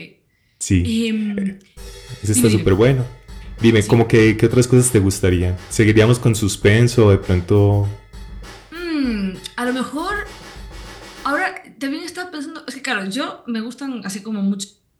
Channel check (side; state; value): both; identical; correlation 1.00